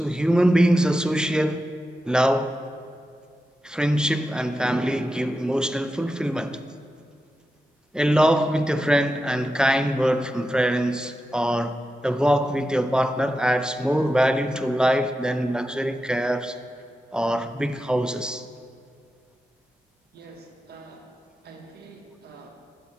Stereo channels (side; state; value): both; normal; correlation 0.90